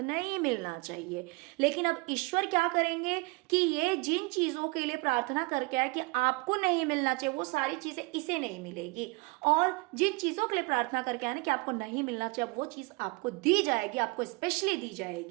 नहीं मिलना चाहिए, लेकिन अब ईश्वर क्या करेंगे कि ये जिन चीजों के लिए प्रार्थना करके आए कि आपको नहीं मिलना चाहिए, वो सारी चीजें इसे नहीं मिलेगी, और जिन चीजों के लिए प्रार्थना करके आए ना कि आपको नहीं मिलना चाहिए, वो चीज आपको दी जाएगी, आपको स्पेशली दी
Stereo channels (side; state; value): left; quieter; 26.6 dB